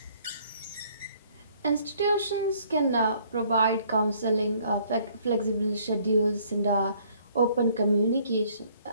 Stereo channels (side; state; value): both; inverted; correlation -0.62